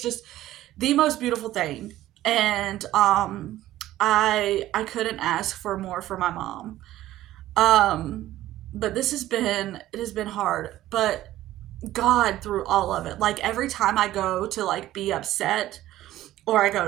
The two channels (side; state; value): left; quieter; 14.5 dB